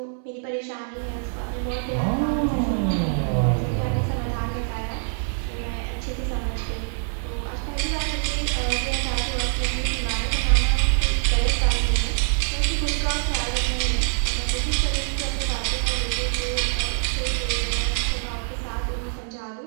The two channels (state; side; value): silent; left; 62 dB below the other